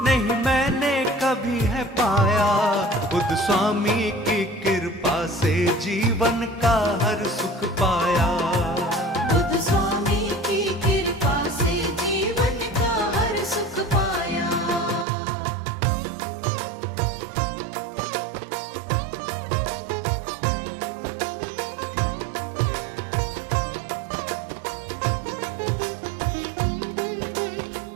नहीं मैंने कभी है पाया। बुद्ध स्वामी की कृपा से जीवन का हर सुख पाया। बुद्ध स्वामी की कृपा से जीवन का हर सुख पाया।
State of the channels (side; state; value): left; drops out; at 15.1 s